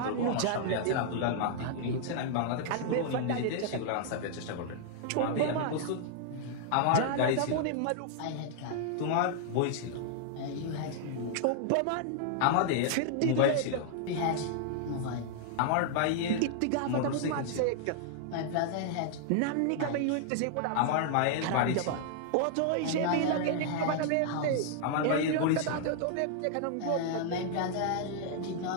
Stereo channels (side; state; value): both; different; correlation -0.01